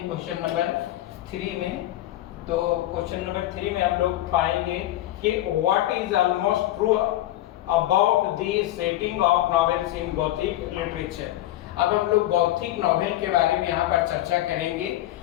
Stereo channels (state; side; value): quieter; right; 14.8 dB